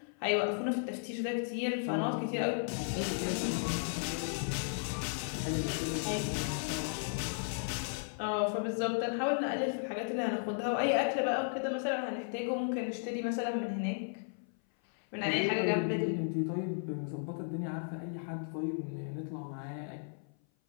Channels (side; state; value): right; silent; 55 dB below the other